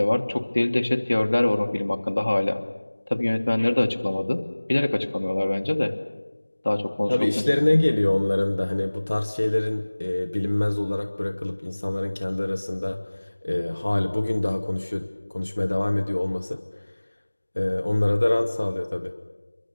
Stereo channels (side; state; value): both; inverted; correlation -1.00